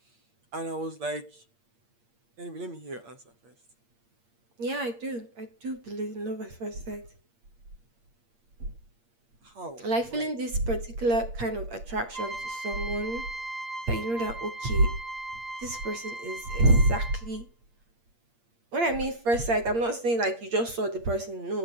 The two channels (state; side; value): late; left; 8.6 ms